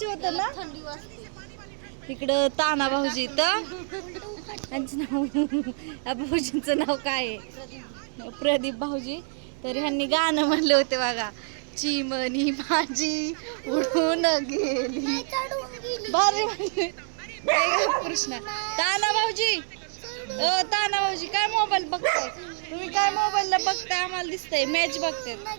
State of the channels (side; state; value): left; silent; 60 dB below the other